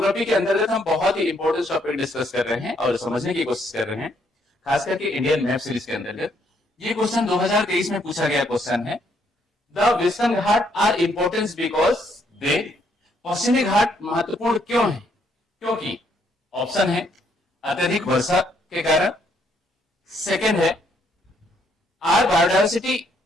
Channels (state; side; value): normal; both; correlation 0.71